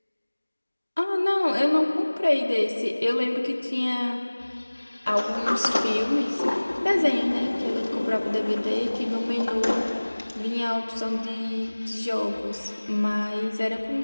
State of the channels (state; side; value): inverted; both; correlation -1.00